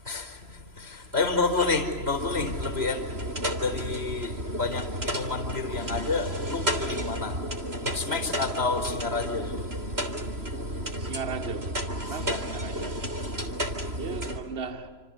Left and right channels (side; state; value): left; late; 3.0 ms